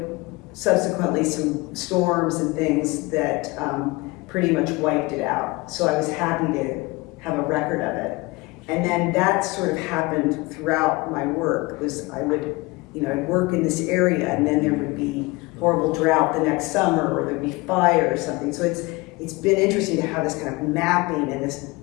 subsequently some storms and things that pretty much wiped it out. So I was happy to have a record of it. And then that sort of happened throughout my work. I'd work in this area, and then there would be horrible drought the next summer, or there'd be fire or something. So it's been interesting to have this kind of mapping and this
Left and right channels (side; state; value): right; quieter; 23.6 dB